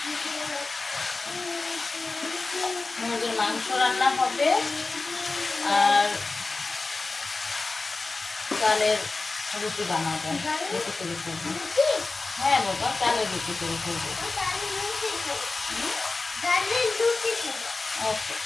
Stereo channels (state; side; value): quieter; right; 3.7 dB